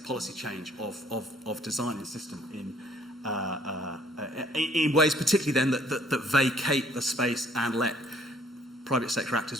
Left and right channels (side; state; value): both; normal; correlation 0.60